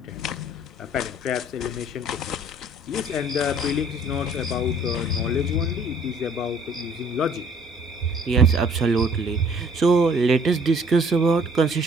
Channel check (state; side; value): normal; both; correlation 0.57